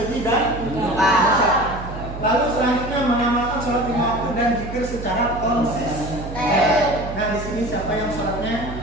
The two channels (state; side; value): noise; right; hum, 10 dB below the sound